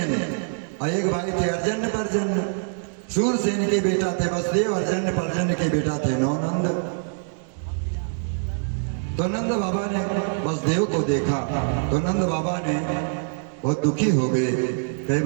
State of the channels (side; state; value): left; silent; digital silence